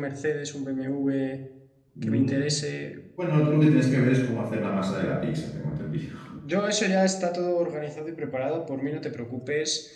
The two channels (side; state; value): both; identical; correlation 1.00